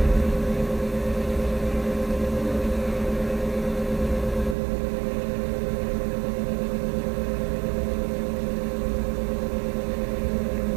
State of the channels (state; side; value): drops out; left; at 4.5 s